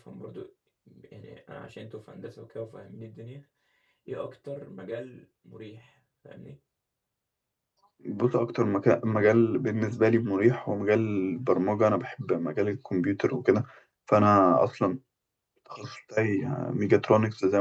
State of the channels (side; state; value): both; identical; correlation 1.00